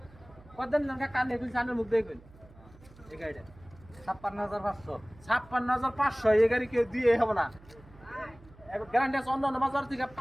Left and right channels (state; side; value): noise; right; hum, 23 dB below the sound